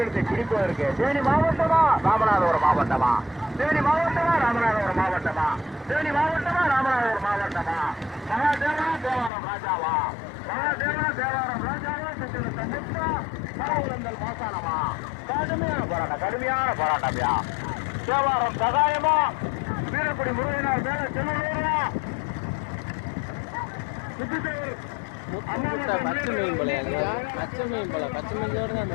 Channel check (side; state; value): right; drops out; at 9.3 s